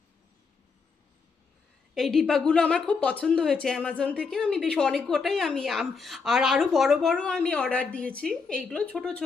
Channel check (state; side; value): quieter; right; 5.0 dB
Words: এই ডিব্বাগুলো আমার খুব পছন্দ হয়েছে অ্যামাজন থেকে। আমি বেশ অনেক কটাই আমি আর আরও বড় বড় আমি অর্ডার দিয়েছি, এইগুলো ছোট